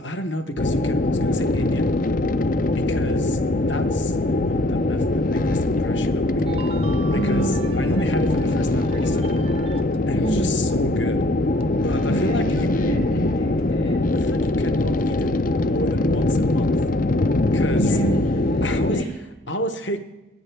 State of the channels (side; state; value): both; normal; correlation 0.59